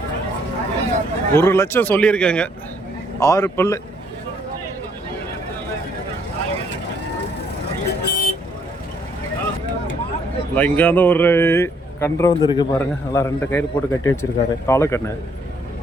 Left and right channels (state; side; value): normal; both; correlation 0.68